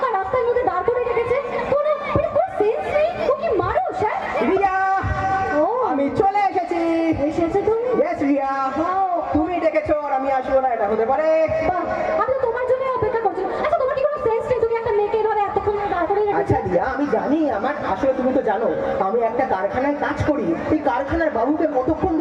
রাস্তার মধ্যে দাঁড় করে রেখেছে, কোনো সেন্স নেই। ও কি মানুষ? হ্যাঁ রিয়া, ও আমি চলে এসেছি। এসেছে তুমি? ইয়েস রিয়া, তুমি ডেকেছো আর আমি আসবো না, এটা হতে পারে? বাহ, আমি তো তোমার জন্য অপেক্ষা করছিলাম। আচ্ছা তোমার কি কোনো সেন্স নেই? তুমি একটা মেয়েকে এভাবে এতক্ষণ ধরে দাঁড় করে রেখেছো। আচ্ছা রিয়া, আমি জানি আমার আসলে তুমি তো জানো আমি একটা কারখানায় কাজ করি। এই কারখানার বাবুকে কতক্ষণ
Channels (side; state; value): both; identical; correlation 1.00